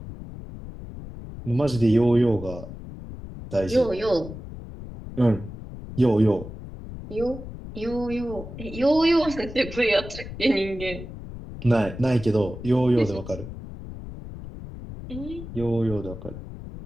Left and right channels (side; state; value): left; noise; rumble, 12 dB below the sound